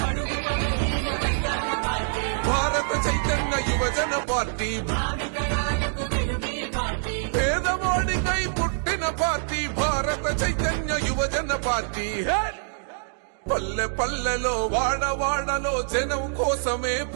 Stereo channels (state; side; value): silent; left; digital silence